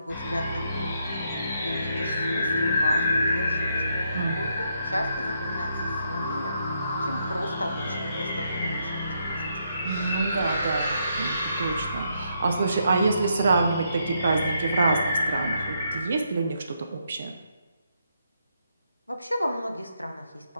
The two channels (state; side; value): inverted; both; correlation -0.77